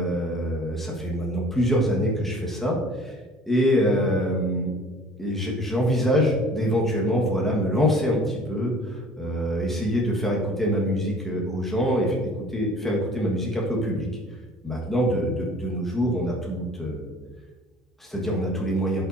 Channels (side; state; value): both; normal; correlation 0.49